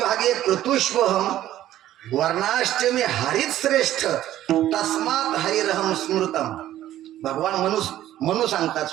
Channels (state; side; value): quieter; left; 13.1 dB